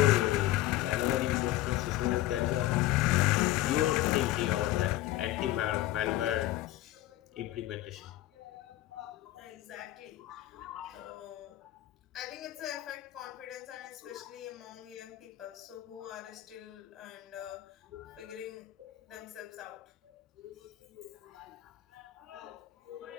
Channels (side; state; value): right; quieter; 15.5 dB